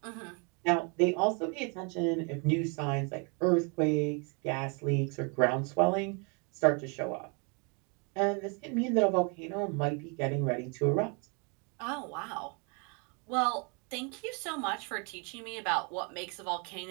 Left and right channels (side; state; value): left; quieter; 34.8 dB